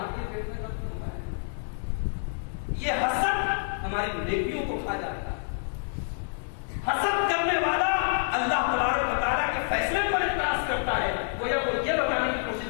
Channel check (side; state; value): right; silent; digital silence